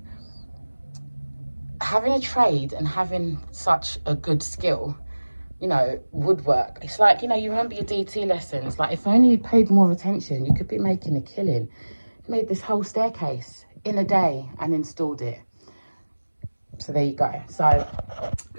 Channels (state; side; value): inverted; both; correlation -1.00